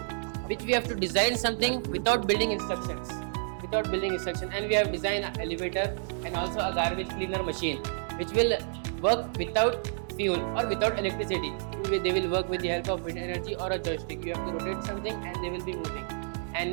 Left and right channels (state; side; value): silent; left; digital silence